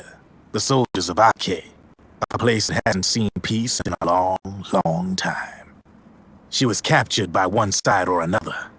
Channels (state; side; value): identical; both; correlation 1.00